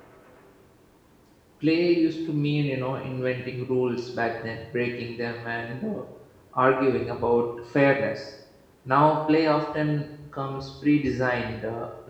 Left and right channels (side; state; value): both; identical; correlation 1.00